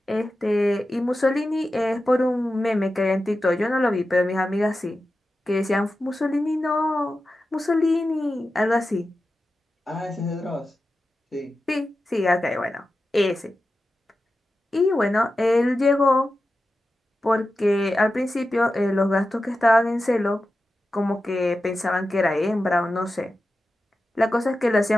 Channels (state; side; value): normal; both; correlation 0.92